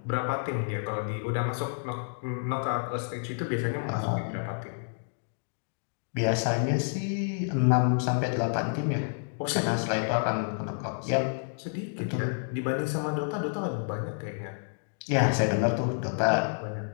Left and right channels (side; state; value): right; silent; digital silence